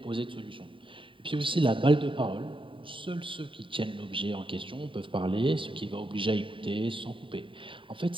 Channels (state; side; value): late; left; 0.25 ms